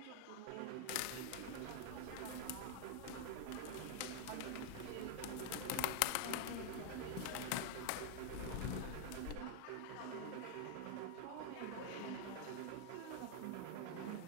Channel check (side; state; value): both; different; correlation 0.00